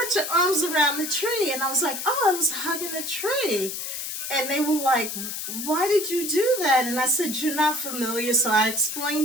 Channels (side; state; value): left; noise; hiss, 5 dB below the sound